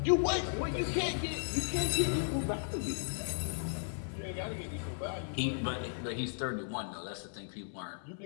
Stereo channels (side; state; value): right; silent; 54 dB below the other